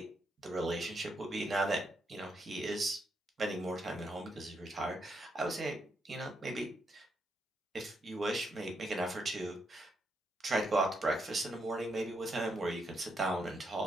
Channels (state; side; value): normal; both; correlation 0.79